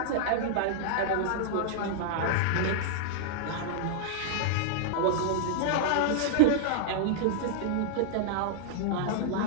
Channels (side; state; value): both; different; correlation -0.01